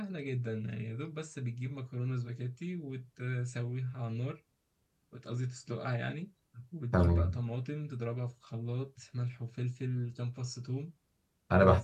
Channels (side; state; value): both; identical; correlation 1.00